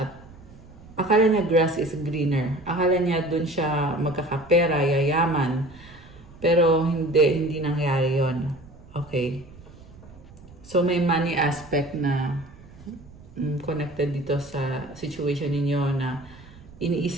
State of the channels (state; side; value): noise; right; rumble, 21 dB below the sound